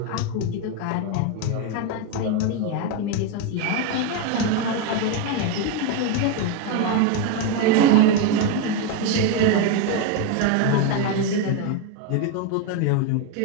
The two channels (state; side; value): different; both; correlation 0.02